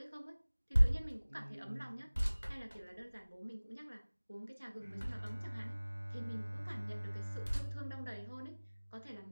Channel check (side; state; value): both; inverted; correlation -1.00